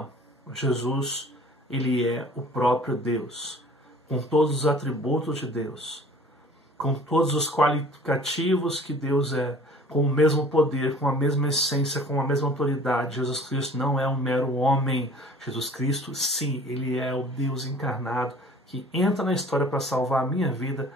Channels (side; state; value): both; normal; correlation 0.49